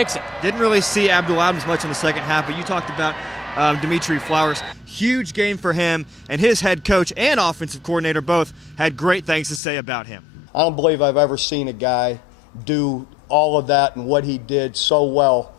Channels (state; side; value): drops out; right; at 9.6 s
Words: Didn't really see Abdul Adams much in the second half, but you talked about Dimitri Flowers. Huge game for him, and his head coach and offensive coordinator both had great things to say about him. I don't believe I've ever seen a guy do all of that and what he did so well